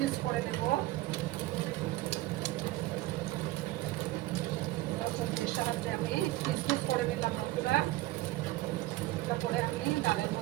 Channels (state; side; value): quieter; left; 17.7 dB